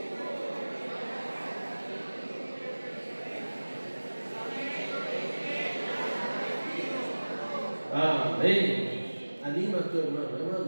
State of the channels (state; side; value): inverted; both; correlation -1.00